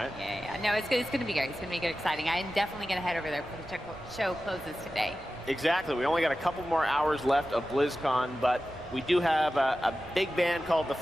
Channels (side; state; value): right; noise; rumble, 22 dB below the sound